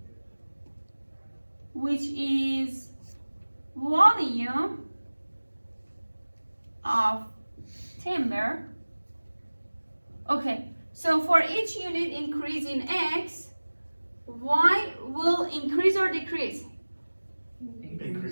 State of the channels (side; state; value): both; inverted; correlation -1.00